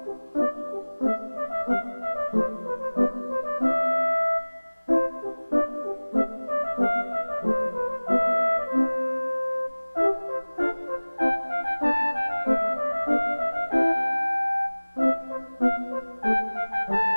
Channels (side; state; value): both; inverted; correlation -1.00